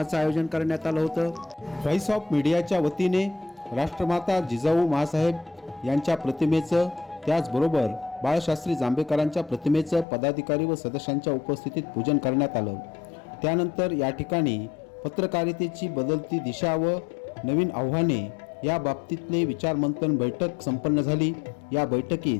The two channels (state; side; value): drops out; right; at 10.1 s